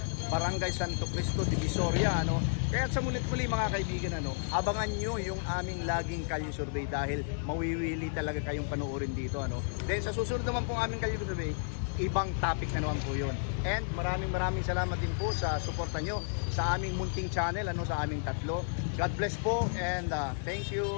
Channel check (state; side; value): silent; right; digital silence